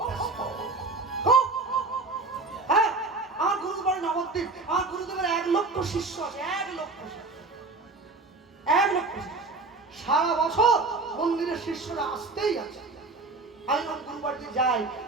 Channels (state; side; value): quieter; left; 3.6 dB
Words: ব্যস্ত। হ্যাঁ, আমার গুরুদেব নবদ্বীপ, আমার গুরুদেবের 1 লক্ষ শিষ্য আছে, 1 লক্ষ শিষ্য। সারা বছর মন্দিরের শিষ্যরা আসতেই আছে। আমি যখন গুরুবাড়িতে যাই,